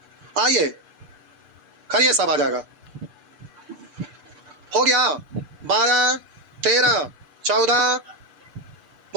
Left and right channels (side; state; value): left; late; 6.8 ms